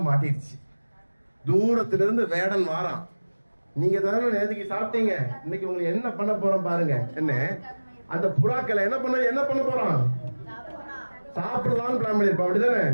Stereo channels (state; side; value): inverted; both; correlation -1.00